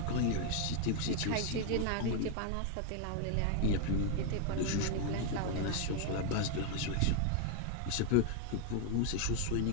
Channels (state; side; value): different; both; correlation 0.00